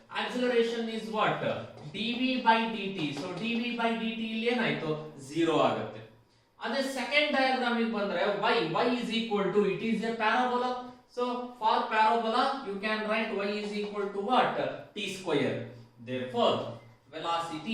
Acceleration is what? dv by dt. So dv by dt ಇಲ್ಲಿ ಏನಾಯ್ತು 0 ಆಗುತ್ತೆ. ಅದೇ second diagram ಗೆ ಬಂದ್ರೆ y is equal to, it is a parabola, so for parabola you can write y is equal to what? t square. Therefore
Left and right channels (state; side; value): identical; both; correlation 1.00